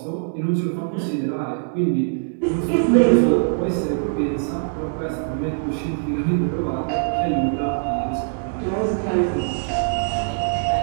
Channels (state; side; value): silent; left; digital silence